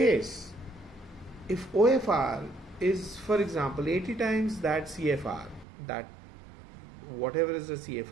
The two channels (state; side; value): drops out; left; at 5.7 s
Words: if OFR is, for example, 80 times that CFR, that whatever is the